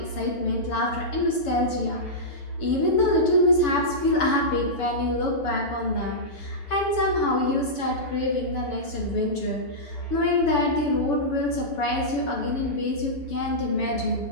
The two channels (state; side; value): late; right; 7.0 ms